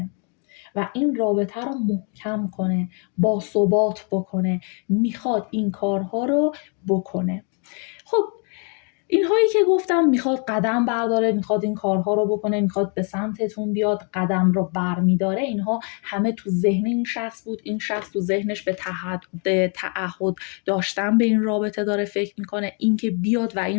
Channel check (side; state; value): right; quieter; 38.2 dB